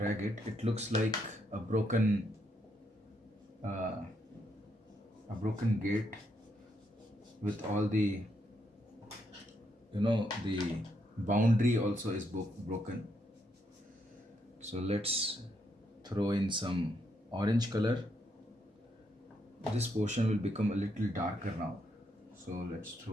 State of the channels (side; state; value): both; normal; correlation 0.77